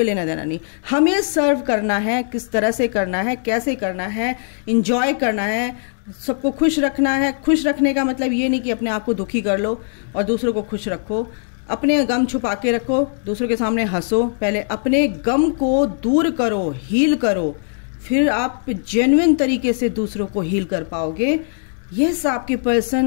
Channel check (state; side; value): silent; right; digital silence